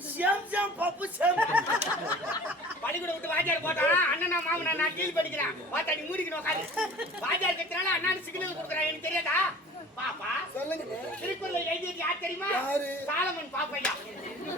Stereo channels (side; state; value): both; normal; correlation 0.44